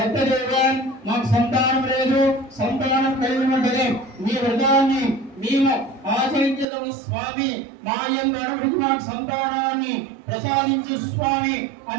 మాకు సంతానం లేదు, సంతానం కలిగిన వెంటనే మీ వ్రతాన్ని మేము ఆచరించదం స్వామి, మా యొక్క అనుభూతి మాకు సంతానాన్ని ప్రసాదించు స్వామి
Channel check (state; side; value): drops out; left; at 6.7 s